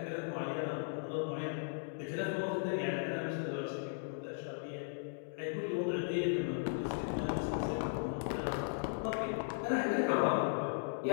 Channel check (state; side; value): silent; right; digital silence